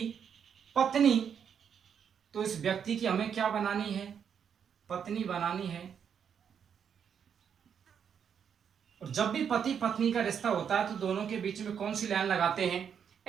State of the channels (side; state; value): left; quieter; 7.7 dB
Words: पत्नी, तो इस व्यक्ति की हमें क्या बनानी है? पत्नी बनानी है। और जब भी पति पत्नी का रिश्ता होता है तो दोनों के बीच में कौन सी लाइन लगाते हैं?